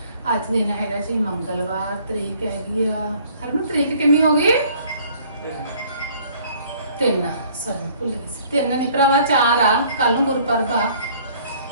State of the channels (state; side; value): inverted; both; correlation -0.57